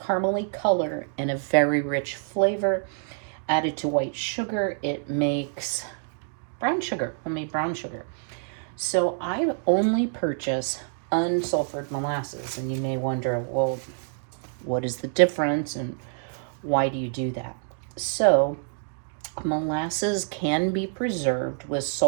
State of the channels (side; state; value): left; silent; digital silence